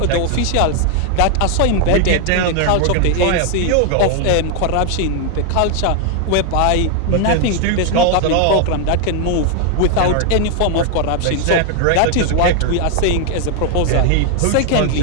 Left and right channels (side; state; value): both; different; correlation 0.00